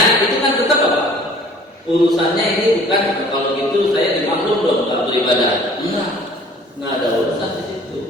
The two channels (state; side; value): normal; both; correlation 0.51